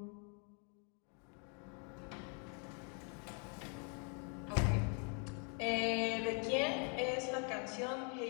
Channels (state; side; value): quieter; right; 39.2 dB